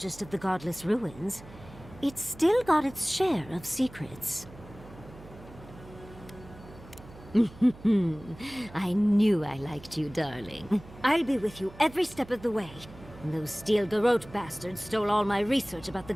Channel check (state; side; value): noise; right; hum, 19 dB below the sound